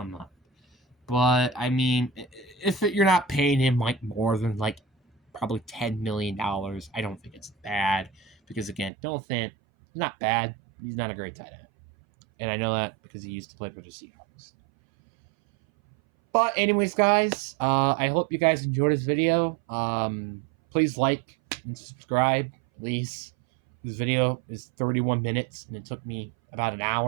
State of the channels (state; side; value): drops out; left; at 8.9 s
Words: up. But I mean, if you're not paying him like more than like probably $10 million, I don't think it's bad. Because again, Noah Fant, not bad. He's not a great tight end. And I know that because he used to play for the Seahawks. But anyways, guys, I hope you guys enjoyed this video. Please like and subscribe, please. This video is 31 minutes, and it took me about an